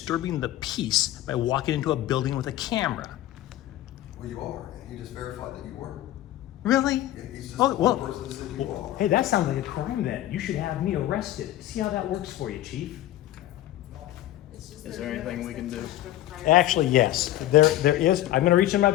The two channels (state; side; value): quieter; right; 14.1 dB